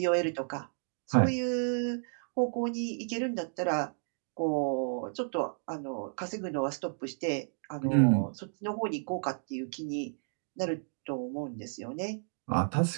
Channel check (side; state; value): left; silent; digital silence